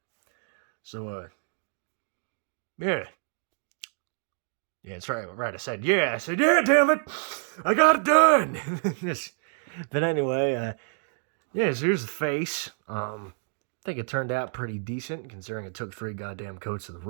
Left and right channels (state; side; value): silent; left; 59 dB below the other